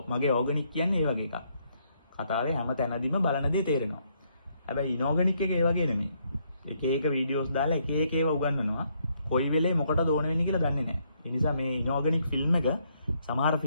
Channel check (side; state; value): both; inverted; correlation -0.73